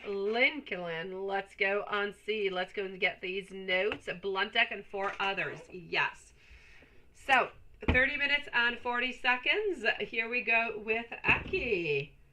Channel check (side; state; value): both; identical; correlation 1.00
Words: Lincoln. Let's go on see. Let's go and get these notes. Blunt deck and 4 others. Yes. So, 30 minutes and 40 seconds. Here we go with Aki.